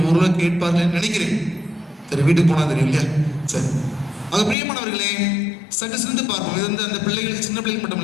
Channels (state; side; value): drops out; right; at 4.5 s